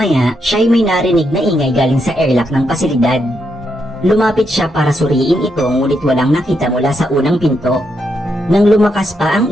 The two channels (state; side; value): normal; both; correlation 0.80